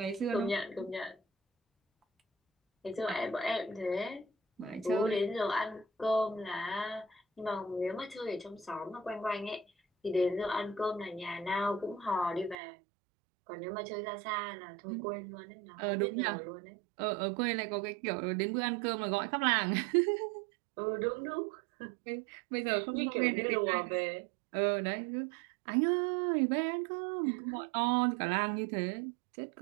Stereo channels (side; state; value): left; drops out; at 12.6 s